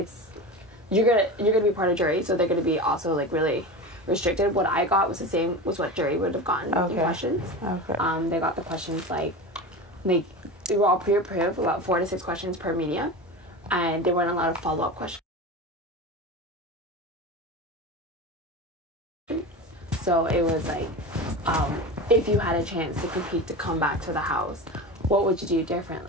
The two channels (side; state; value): both; normal; correlation 0.27